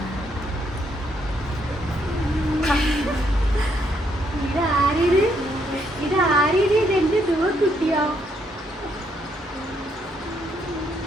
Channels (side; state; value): both; normal; correlation 0.73